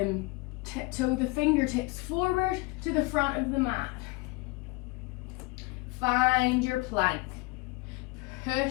Tiptoe the fingertips forward to the front of the mat. Find your plank.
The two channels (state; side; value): quieter; right; 23.5 dB